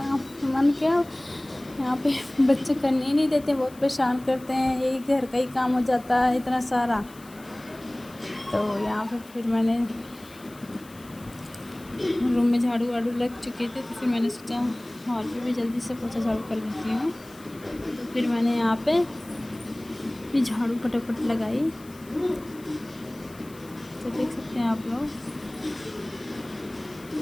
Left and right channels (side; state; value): left; noise; hiss, 23 dB below the sound